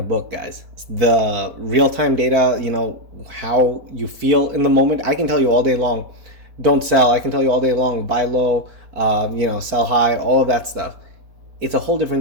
book, guys. The real-time data, how you feel in the moment, I can tell you all day long, don't sell. I can tell you all day long, buy low, sell high, all of that stuff. It's a whole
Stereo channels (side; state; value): left; late; 4.1 ms